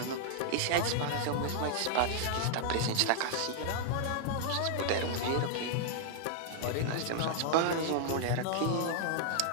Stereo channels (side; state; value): both; different; correlation -0.01